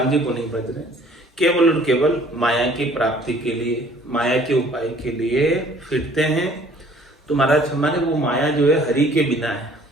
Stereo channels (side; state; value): both; normal; correlation 0.56